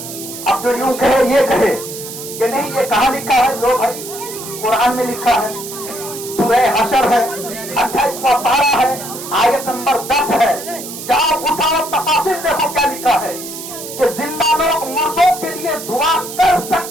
اب جو یوں کہے یہ کہے کہ نہیں یہ کہاں لکھا ہے, لو بھائی قرآن میں لکھا ہے, سورہ حشر ہے, 28واں پارہ ہے, آیت نمبر 10 ہے. جاؤ اٹھاؤ تفاصیل دیکھو کیا لکھا ہے کہ زندہ لوگ مردوں کے لیے دعا کر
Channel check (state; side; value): noise; right; hiss, 10 dB below the sound